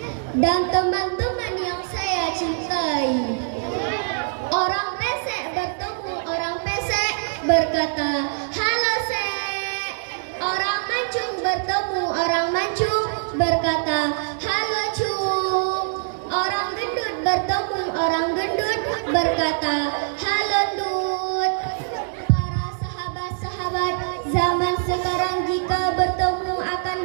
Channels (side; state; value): left; silent; digital silence